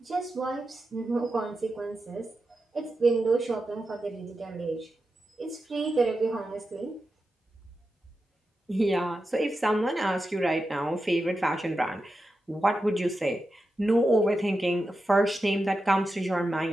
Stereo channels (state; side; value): normal; both; correlation 0.90